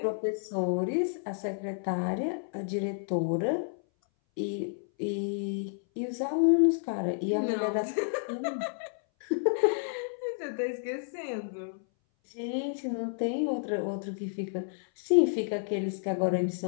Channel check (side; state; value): right; silent; 57 dB below the other